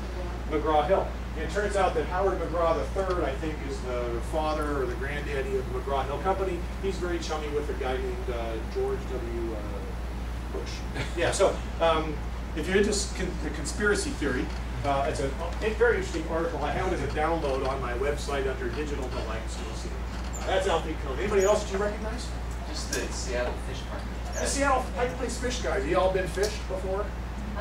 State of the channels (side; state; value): both; identical; correlation 1.00